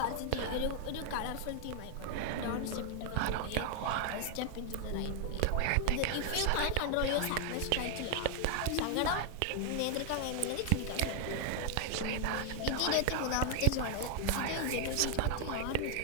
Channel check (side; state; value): both; different; correlation 0.00